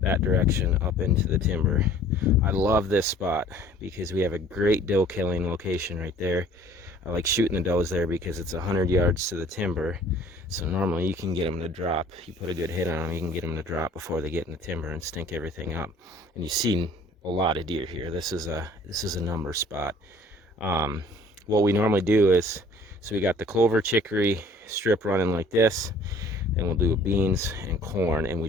direction up into the timber. I love this spot because we have a great doe killing location right there. I like shooting the does there because it's 100 yards to the timber. So normally you can get them to drop. You put a good hit on them, you can get them to drop before they get in the timber and stink everything up. And you've seen a lot of deer here. This is a number spot. What we normally do is, so we got the clover chicory strip running like this, and we'll do beans and corn, and we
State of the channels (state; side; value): normal; both; correlation 0.53